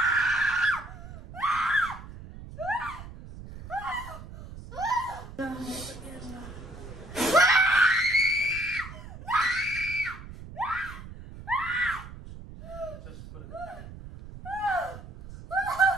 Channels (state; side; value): noise; right; rumble, 14 dB below the sound